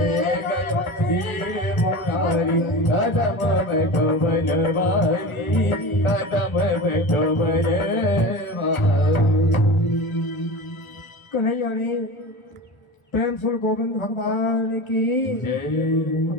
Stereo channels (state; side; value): late; right; 1.1 ms